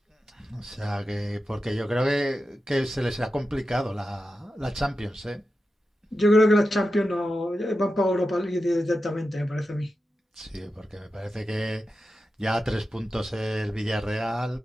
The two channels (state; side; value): normal; both; correlation 0.91